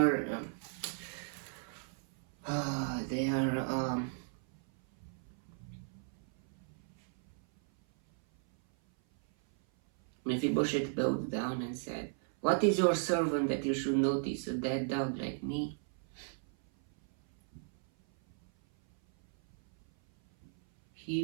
there. Mephibosheth bowed down and said, "What is your servant that you should notice a dead dog like me?"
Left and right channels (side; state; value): left; silent; 54 dB below the other